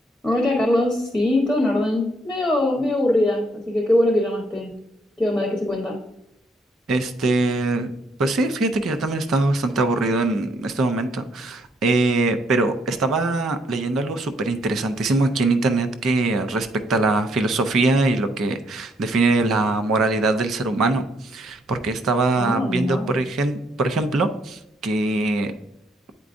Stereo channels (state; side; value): normal; both; correlation 0.71